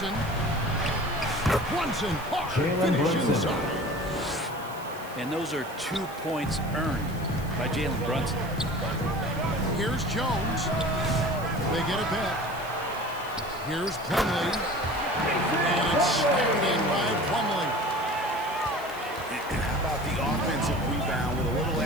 Brunson, Jalen finish Brunson. inside. And those are 2 points earned by Jalen Brunson. Here's Jones. They get it back. Here's Plumlee. And it's slammed in by Plumlee. And how about the offensive rebound with a little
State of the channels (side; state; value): right; noise; hiss, 19 dB below the sound